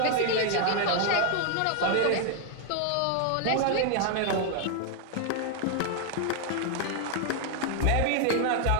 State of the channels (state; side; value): different; both; correlation 0.00